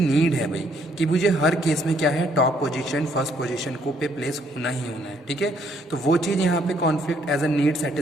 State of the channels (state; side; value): normal; both; correlation 0.68